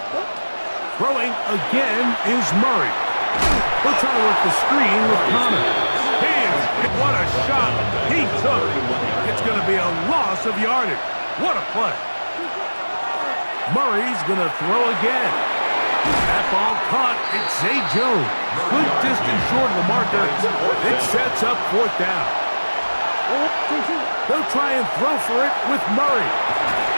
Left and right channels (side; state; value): both; inverted; correlation -1.00